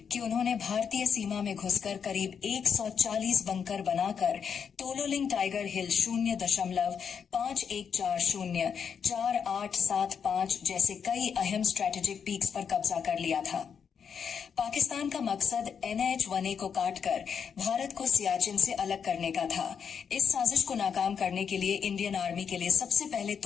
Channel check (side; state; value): right; quieter; 7.0 dB